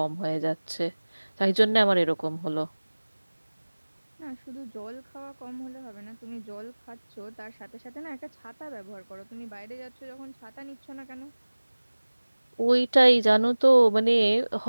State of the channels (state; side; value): inverted; both; correlation -1.00